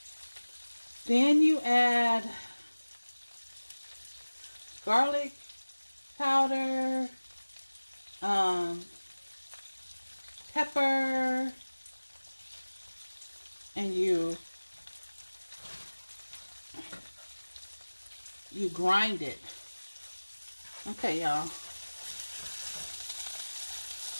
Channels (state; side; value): inverted; both; correlation -1.00